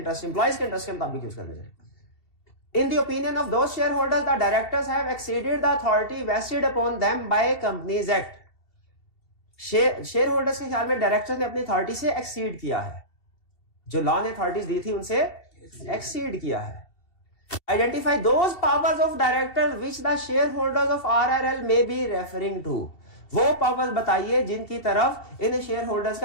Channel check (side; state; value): right; late; 2.7 ms